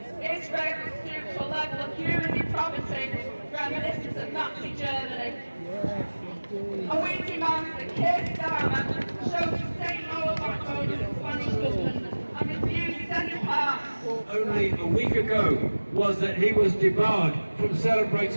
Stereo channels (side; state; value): both; inverted; correlation -1.00